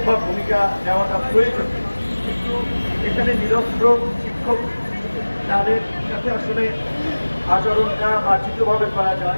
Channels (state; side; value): inverted; both; correlation -1.00